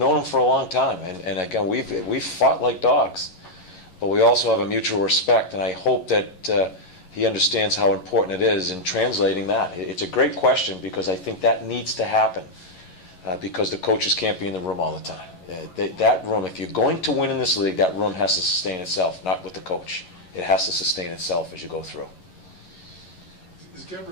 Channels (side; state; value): right; late; 11 ms